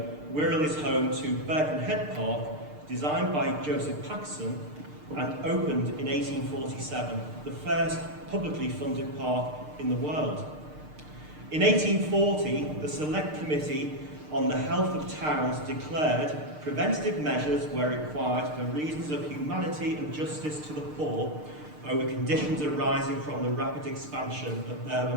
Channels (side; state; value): left; late; 6.6 ms